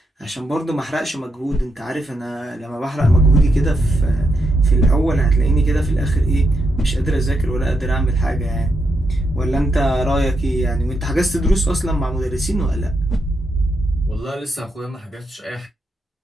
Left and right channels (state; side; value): normal; both; correlation 0.82